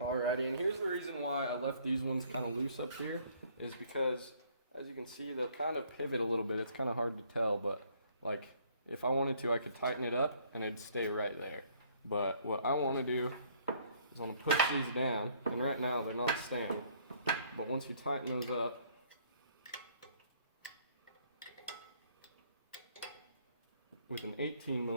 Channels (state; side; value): inverted; both; correlation -0.62